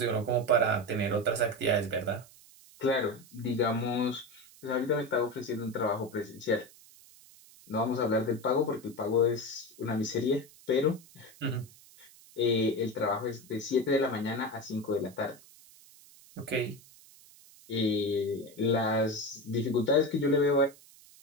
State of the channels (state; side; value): noise; right; hiss, 23 dB below the sound